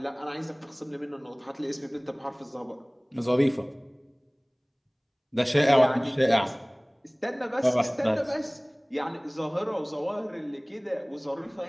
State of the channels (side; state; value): both; identical; correlation 1.00